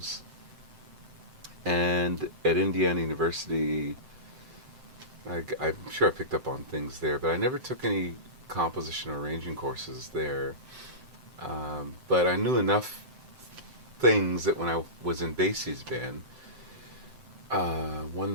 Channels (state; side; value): late; left; 7.7 ms